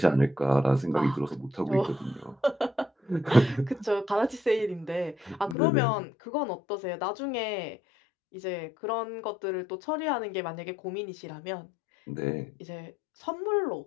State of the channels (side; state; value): right; drops out; at 5.6 s